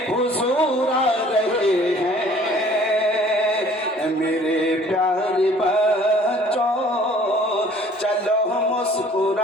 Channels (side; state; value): both; normal; correlation 0.53